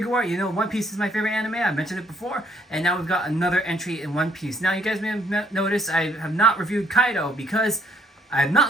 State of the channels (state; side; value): normal; both; correlation 0.67